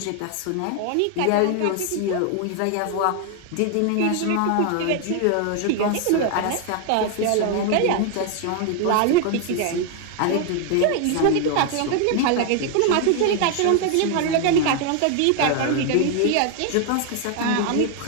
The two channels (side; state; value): both; different; correlation 0.01